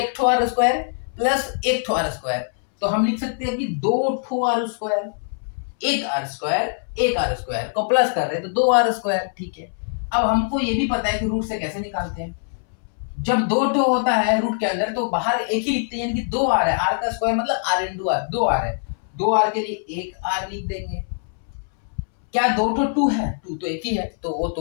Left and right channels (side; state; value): right; silent; 64 dB below the other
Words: ठो r स्क्वायर प्लस एक ठो r स्क्वायर, तो हम लिख सकते हैं कि 2 ठो r स्क्वायर, एक r स्क्वायर को प्लस कर रहे हैं तो 2 r स्क्वायर, ठीक है। अब हमको ये भी पता है कि रूट से कैसे निकालते हैं, जब 2 ठो होता है रूट के अंदर तो बाहर एक ही लिखते हैं, यानी कि 2 r है, r का स्क्वायर मतलब r इंटू r, 2 r है, 2 r के लिए एक r लिख देंगे। क्या 2 ठो 2 है, 2 तो एक ही है, तो वो